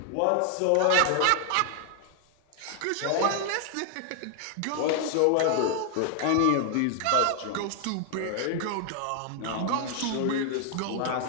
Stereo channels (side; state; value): both; different; correlation 0.00